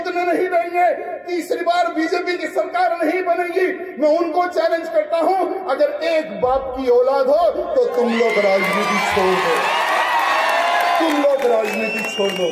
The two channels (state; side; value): identical; both; correlation 1.00